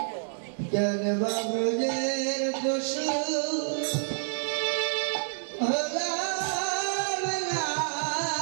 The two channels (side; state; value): left; silent; digital silence